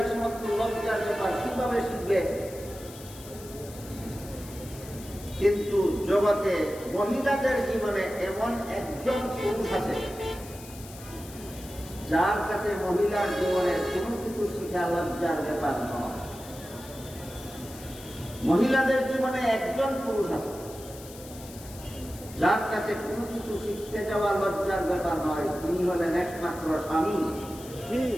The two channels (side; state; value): left; noise; hiss, 17 dB below the sound